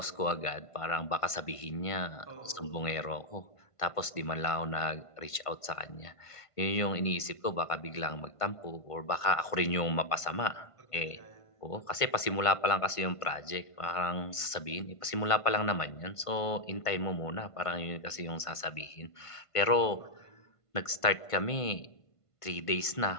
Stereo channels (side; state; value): right; late; 1.5 ms